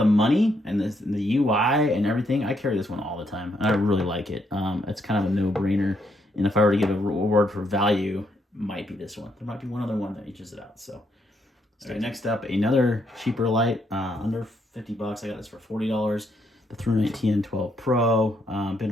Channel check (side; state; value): both; normal; correlation 0.75